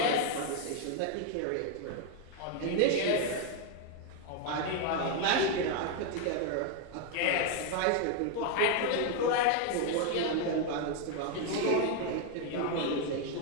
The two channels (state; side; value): different; both; correlation 0.01